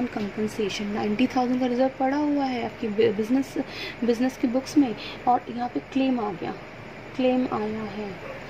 compensation, 90,000 का रिजर्व पड़ा हुआ है आपकी बिजनेस की बुक्स में, और यहाँ पे क्लेम आ गया, क्लेम आया है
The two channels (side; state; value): both; identical; correlation 1.00